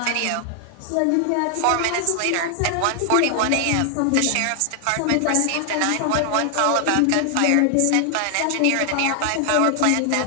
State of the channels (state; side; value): different; both; correlation 0.00